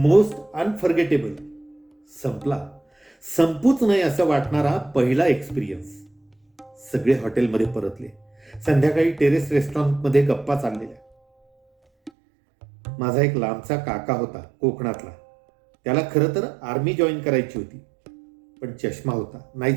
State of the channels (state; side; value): drops out; left; at 12.1 s